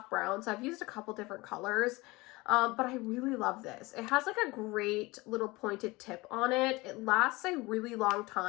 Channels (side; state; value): right; quieter; 22.3 dB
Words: brown, so I've used a couple different colors. But I really love this. It has like a great little pointed tip on it. It lasts a really long